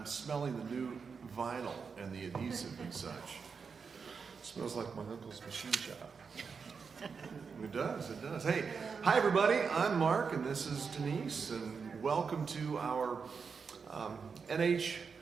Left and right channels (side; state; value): left; quieter; 5.6 dB